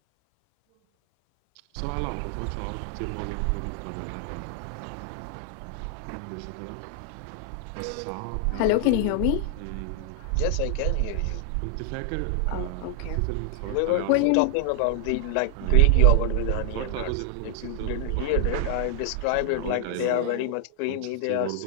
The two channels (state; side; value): different; both; correlation 0.00